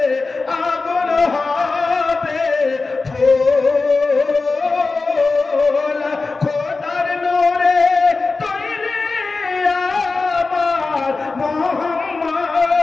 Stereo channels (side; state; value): right; quieter; 3.9 dB